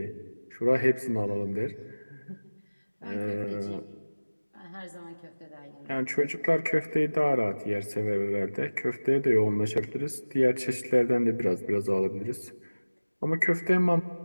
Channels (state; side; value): inverted; both; correlation -1.00